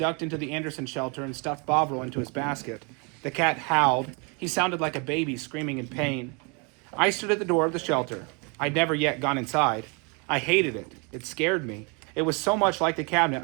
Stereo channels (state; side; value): quieter; left; 32.6 dB